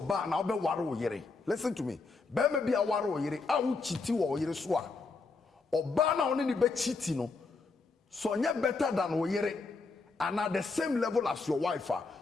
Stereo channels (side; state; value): right; quieter; 4.1 dB